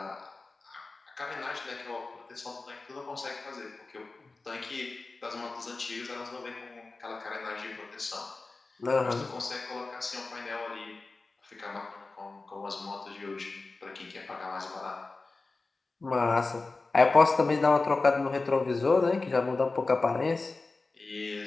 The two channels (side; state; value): right; quieter; 3.6 dB